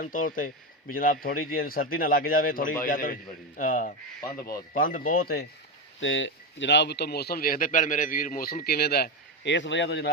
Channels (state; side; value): normal; both; correlation 0.13